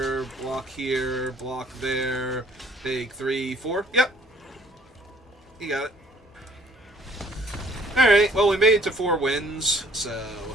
block there, take 3, 4. Yep. You got it. Alright, well, we made it to 4 wins, so...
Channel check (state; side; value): normal; both; correlation 0.58